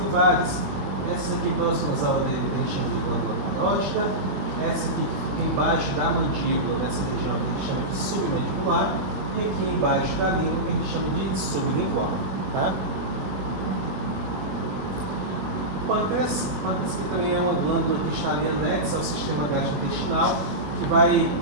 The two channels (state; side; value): late; left; 21 ms